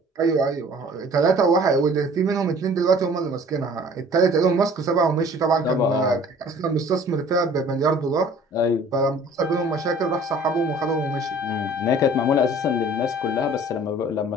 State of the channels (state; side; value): normal; both; correlation 0.50